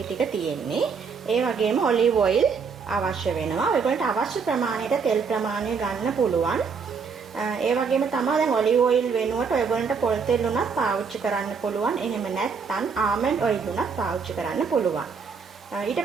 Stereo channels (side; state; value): left; quieter; 5.6 dB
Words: ටික තියෙන්නේ. ඒ වගේම ඔලිව් ඔයිල් අවශ්‍ය වෙනවා. ඔයගොල්ලන්ට අවශ්‍ය ප්‍රමාණයට තෙල් ප්‍රමාණය ගන්න පුළුවන්. ඒ වගේම තමයි දැන් ඔලිව් ඔයිල් වෙනුවට ඔයගොල්ලන්ට පොල් තෙල් උනත් පාවිච්චි කරන්න පුළුවන්. එහෙම නැත්නම් ආමන්ඩ් ඔයිල් උනත් පාවිච්චි කරන්න පුළුවන්. ඊට